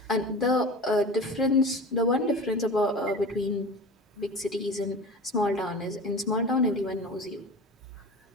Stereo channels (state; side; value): normal; both; correlation 0.34